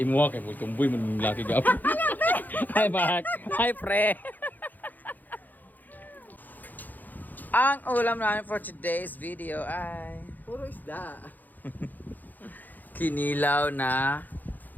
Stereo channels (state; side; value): late; right; 0.084 ms